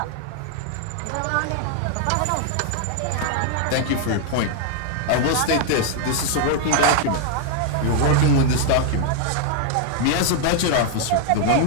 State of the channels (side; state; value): both; different; correlation 0.00